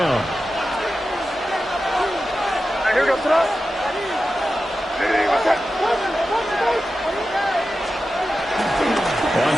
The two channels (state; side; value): normal; both; correlation 0.92